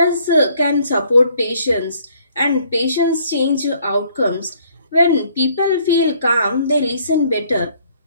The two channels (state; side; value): inverted; both; correlation -0.63